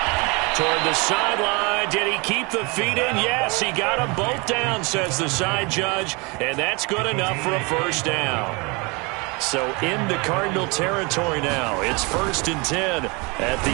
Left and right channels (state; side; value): quieter; left; 28.6 dB